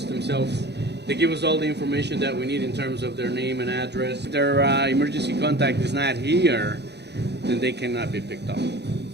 themselves, they give us all the information that we need in terms of their name and address. If their emergency contact is not here, then they cannot be picked up.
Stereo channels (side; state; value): left; late; 0.49 ms